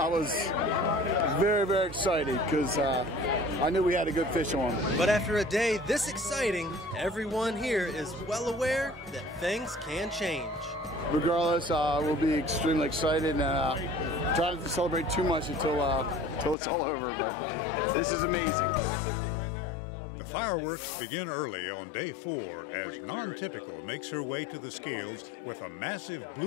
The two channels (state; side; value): drops out; right; at 16.6 s